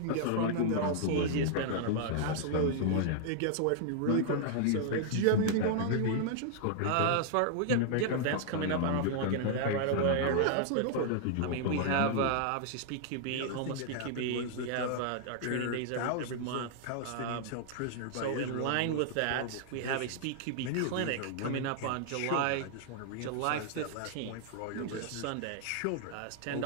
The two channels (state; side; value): different; both; correlation -0.01